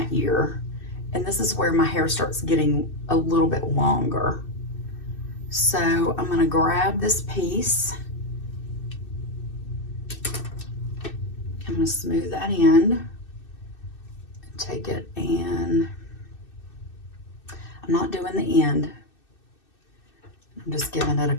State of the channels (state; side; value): late; right; 2.6 ms